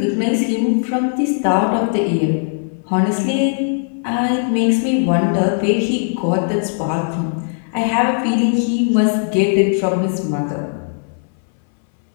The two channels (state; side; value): silent; right; 61 dB below the other